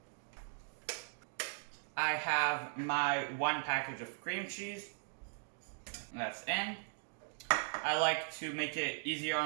I have my 1 package of cream cheese. That's in. I like to make it easier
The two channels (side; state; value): left; silent; 52 dB below the other